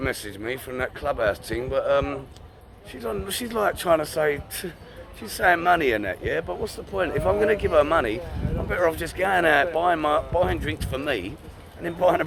me from that clubhouse thing, but she's like trying to say, she's saying money and that, yeah? But what's the point? If I'm going to give her money, I'm better off just going out, buying drinks for me, and then buying a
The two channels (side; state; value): both; identical; correlation 1.00